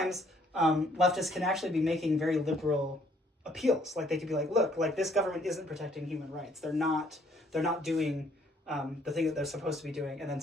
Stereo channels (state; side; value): normal; both; correlation 0.65